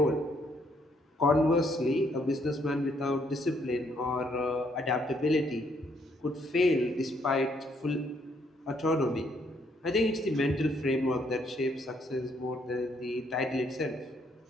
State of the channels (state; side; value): normal; both; correlation 0.70